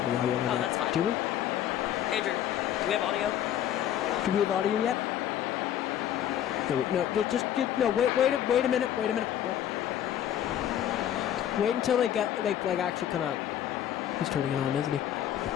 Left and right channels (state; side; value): quieter; right; 10.9 dB